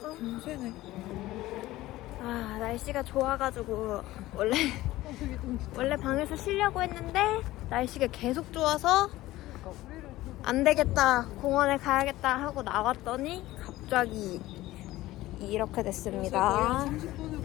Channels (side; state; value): right; quieter; 16.8 dB